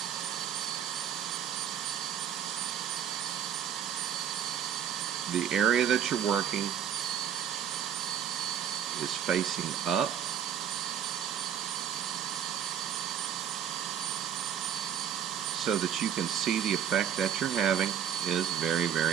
the area that you're working is facing up, so that you can see the effect that you're having is very,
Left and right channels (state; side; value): quieter; left; 9.0 dB